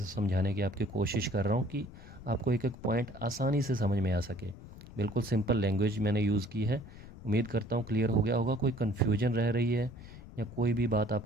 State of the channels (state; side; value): noise; left; rumble, 16 dB below the sound